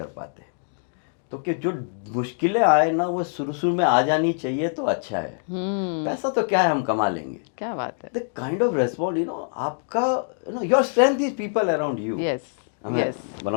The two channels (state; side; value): silent; right; digital silence